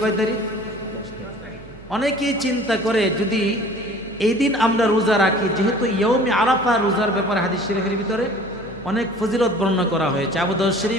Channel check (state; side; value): noise; right; hum, 20 dB below the sound